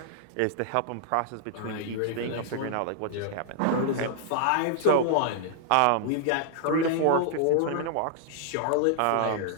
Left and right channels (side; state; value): both; different; correlation -0.01